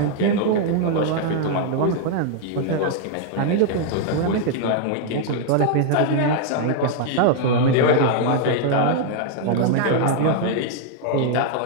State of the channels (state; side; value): different; both; correlation 0.00